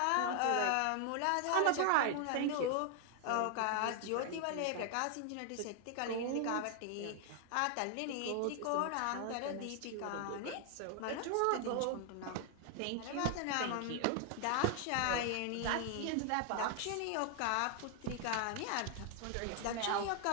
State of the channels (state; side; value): different; both; correlation 0.00